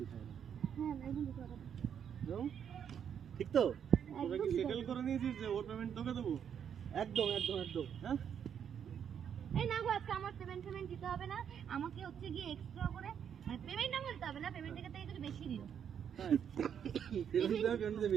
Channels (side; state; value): left; quieter; 8.3 dB